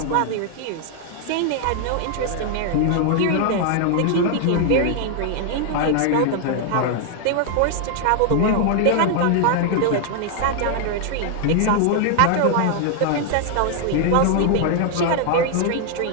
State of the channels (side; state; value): both; different; correlation 0.00